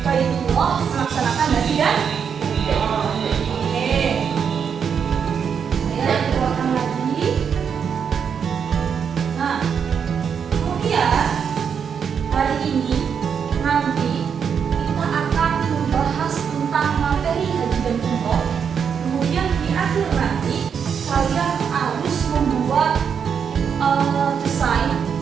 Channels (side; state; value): left; quieter; 7.1 dB